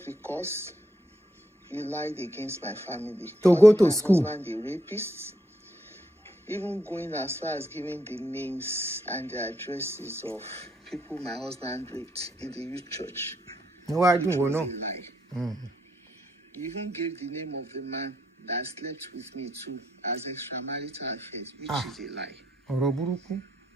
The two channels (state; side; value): normal; both; correlation 0.77